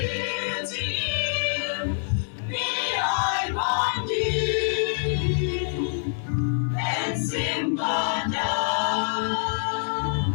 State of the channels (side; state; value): right; silent; digital silence